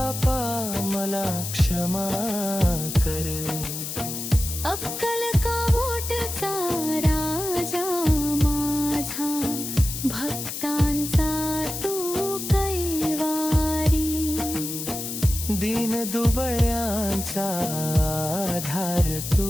मला क्षमा कर. अक्कल कावोटचा राजा माझा, भक्तांचा तू कैवारी. दीन दुबळ्यांचा आधार तू,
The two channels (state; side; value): noise; left; hiss, 6 dB below the sound